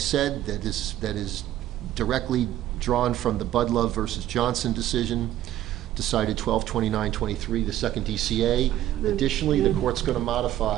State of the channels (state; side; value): quieter; left; 13.1 dB